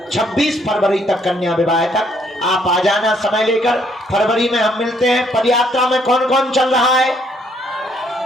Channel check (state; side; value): normal; both; correlation 0.68